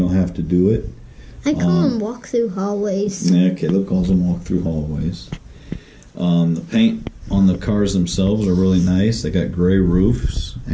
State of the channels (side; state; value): both; identical; correlation 1.00